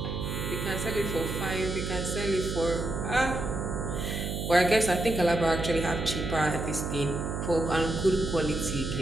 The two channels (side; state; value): right; noise; hum, 3 dB below the sound